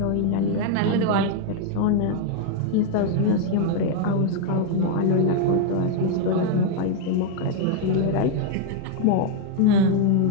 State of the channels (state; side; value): different; both; correlation 0.00